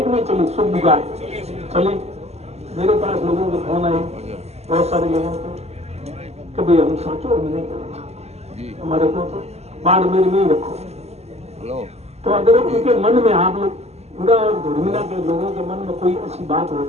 कि नहीं चली? सुखबुगाड़ चली। मेरे पास लोगों के फोन आए, बहुत सारे लोगों को, कभी हम साचोर में नहीं करेंगे, हमारे को तो बाढ़ मेरे में ही रखो। तो अगर उनके मन में, आप लोग पूरा धर्मिला के लोगों के मन में कोई ऐसी बात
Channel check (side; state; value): left; late; 0.30 ms